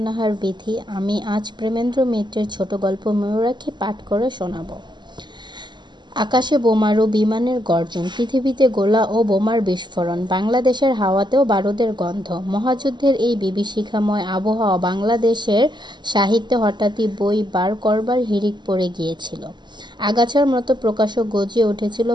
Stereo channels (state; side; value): late; left; 0.22 ms